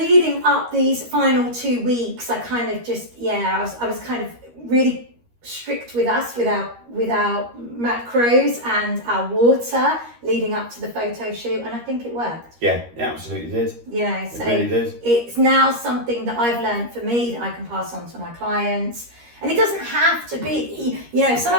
up these final 2 weeks, I kind of just, I was kind of really strict with our macros and our water leading up to the photo shoot, and I think it worked. Yeah, it absolutely did. So it really did. It's now something that I've learned for me that I can pass on to my clients. And it doesn't have to be, some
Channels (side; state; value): left; late; 13 ms